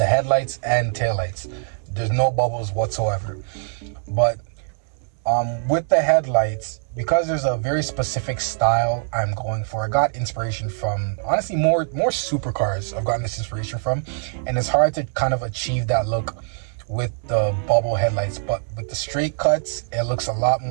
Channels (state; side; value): silent; left; 64 dB below the other